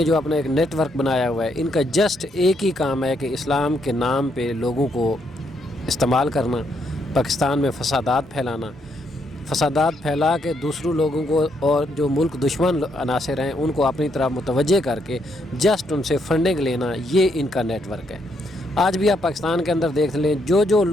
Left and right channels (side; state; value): both; normal; correlation 0.75